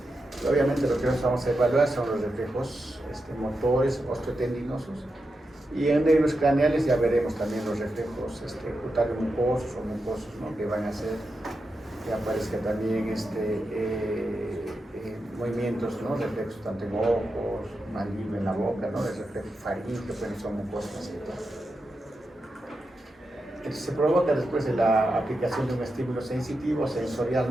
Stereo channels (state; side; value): normal; both; correlation 0.88